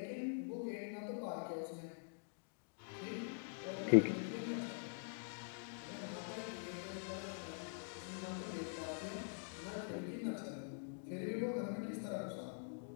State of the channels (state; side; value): silent; right; digital silence